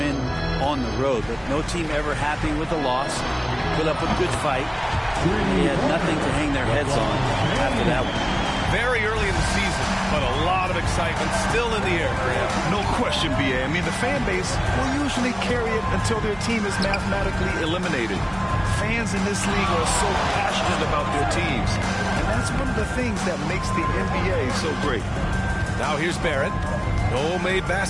on the road, but no team ever happy with the loss. Put up a good fight. They had nothing to hang their heads on after that one. Very early in the season, but a lot of excitement still in the air, Graham. No question, B.A. I mean, the fan base will usually carry it until their team is mathematically eliminated. Fans in this league are so passionate about their teams, and that's one of the things that makes the NBA so great. Now here's Barrett. No made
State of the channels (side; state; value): both; identical; correlation 1.00